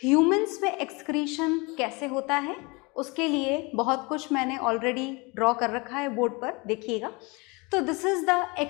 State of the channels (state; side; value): quieter; right; 27.3 dB